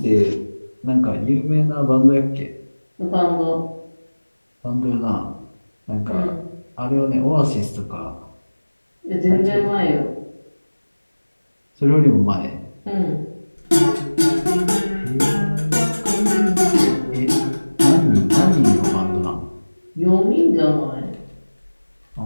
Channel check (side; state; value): both; inverted; correlation -1.00